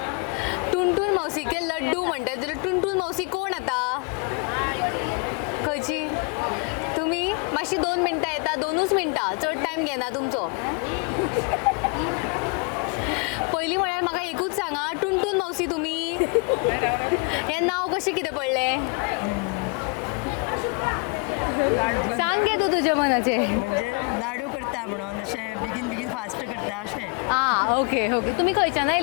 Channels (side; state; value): right; quieter; 32.1 dB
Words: टुनटुन मौसी के लड्डू म्हणटा जाल्यार टुनटुन मौसी कोण आतां? खंयची? तुमी मातशी 2 मिनटां येता, 2च मिनटां, चड टायम घेना तुमचो. पयलीं म्हळ्यार म्हाका एकूच सांगा, टुनटुन मौसी तुमी हें नांव कशें कितें पडलें? सांग गे तूं तुज्या मनाचें. म्हणजे लाडू करता म्हणून अशें बेगीन बेगीन फास्ट करता अशें. आं, ओके ओके. तुमी खंयच्यान